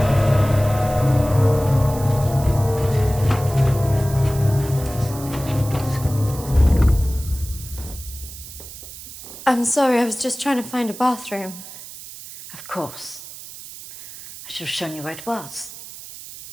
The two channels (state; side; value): noise; right; hiss, 14 dB below the sound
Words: I'm sorry, I was just trying to find a bathroom. Of course. I should have shown you where it was.